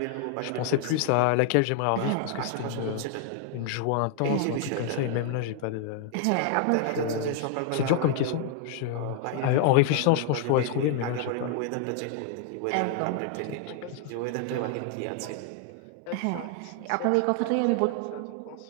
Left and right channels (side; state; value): both; different; correlation 0.00